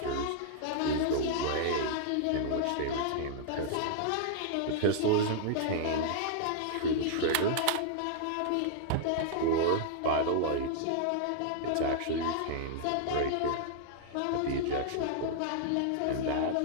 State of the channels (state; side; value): different; both; correlation -0.01